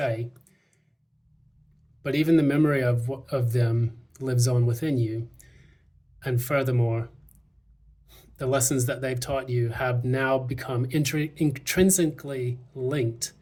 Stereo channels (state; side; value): identical; both; correlation 1.00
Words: but even the memory of them lives on within you. And furthermore, the lessons that they've taught you have now become intrinsically linked